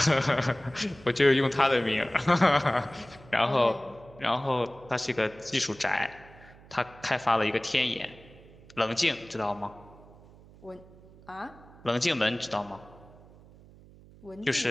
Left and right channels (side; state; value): right; noise; hum, 23 dB below the sound